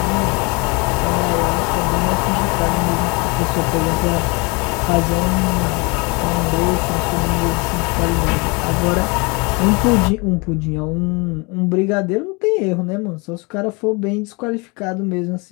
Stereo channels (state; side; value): quieter; right; 29.1 dB